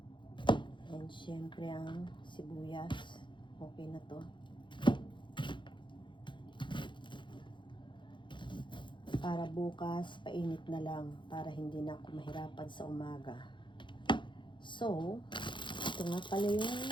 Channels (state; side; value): late; right; 0.23 ms